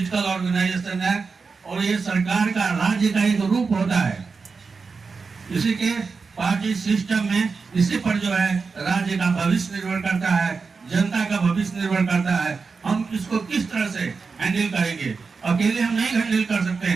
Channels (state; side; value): quieter; left; 4.8 dB